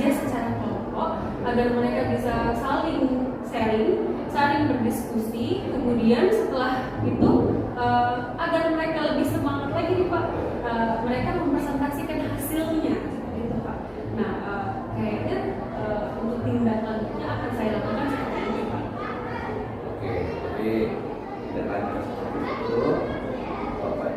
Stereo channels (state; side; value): identical; both; correlation 1.00